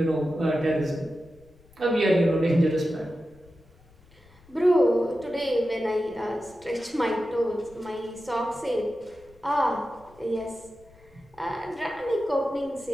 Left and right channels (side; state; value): left; noise; rumble, 27 dB below the sound